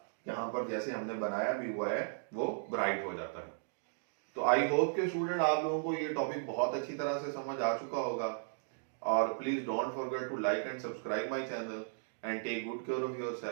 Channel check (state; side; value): silent; left; digital silence